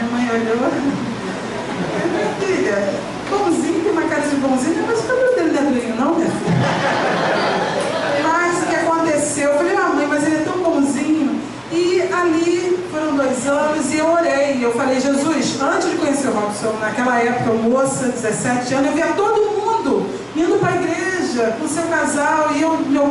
mãe olhou, minha filha, bonzinho, tem uma cara de bonzinho, mas o cabelo dele não é durinho não, minha filha. Mas o que aconteceu? Eu falei, mãe, mas ele é tão bonzinho. E ali foram 2 anos e eu orei. Eu falei, Jesus, antes de conhecer o Robson, naquela época, moça, 17 anos, eu via todo mundo indo para a igreja com seu casal, e meu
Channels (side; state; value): both; identical; correlation 1.00